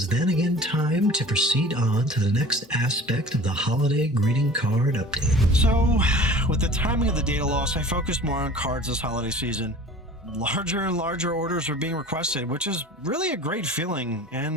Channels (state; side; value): normal; both; correlation 0.43